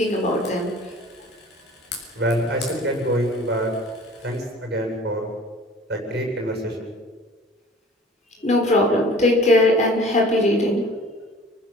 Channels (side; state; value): both; normal; correlation 0.47